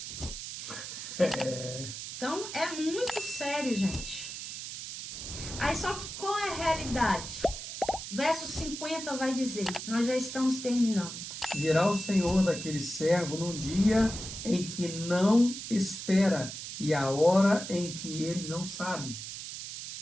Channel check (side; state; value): right; noise; hiss, 8 dB below the sound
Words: Então, é muito sério, gente. Aí, só que qual é a realidade? Verso 50 vai dizer, nós já estamos terminando. Virá o Senhor daquele servo num dia em que não espera e a hora em que ele não sabe.